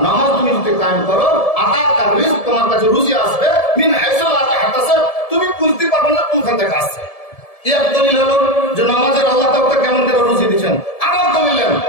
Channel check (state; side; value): late; right; 1.7 ms